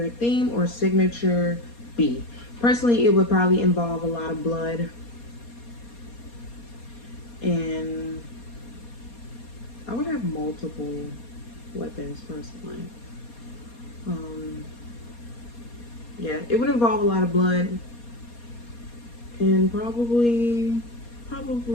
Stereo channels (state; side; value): late; right; 4.2 ms